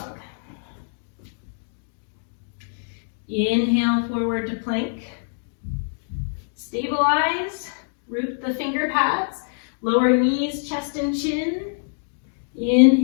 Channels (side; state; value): right; silent; digital silence